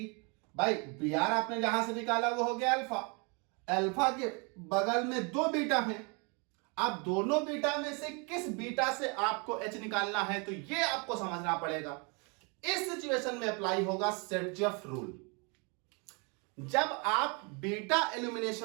भाई Br आपने जहां से निकाला वो हो गया अल्फा, अल्फा के बगल में दो बीटा हैं। अब दोनों बीटा में से किस बीटा से आपको H निकालना है, तो ये आपको समझना पड़ेगा। इस सिचुएशन में अप्लाई होगा सर्जफ रूल। जब आप बीटा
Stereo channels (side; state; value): left; quieter; 33.0 dB